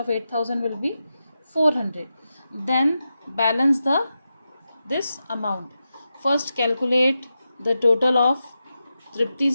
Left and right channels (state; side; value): inverted; both; correlation -0.90